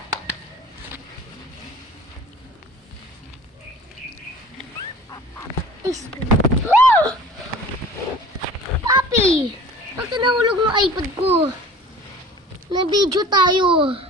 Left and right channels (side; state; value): both; normal; correlation 0.43